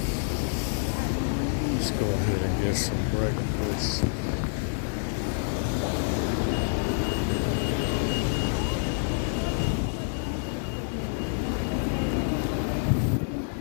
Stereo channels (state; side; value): silent; right; digital silence